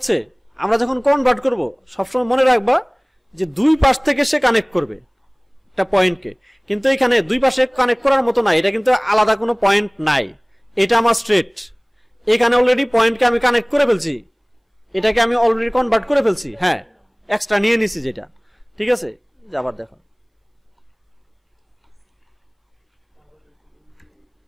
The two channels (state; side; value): identical; both; correlation 1.00